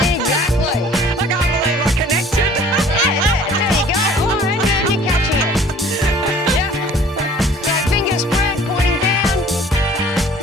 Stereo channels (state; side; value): normal; both; correlation 0.51